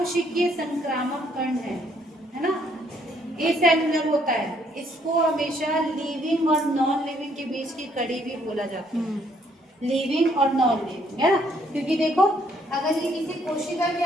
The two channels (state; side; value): normal; both; correlation 0.67